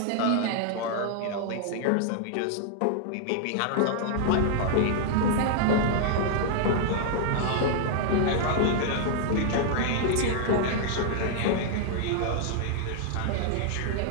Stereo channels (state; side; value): different; both; correlation -0.01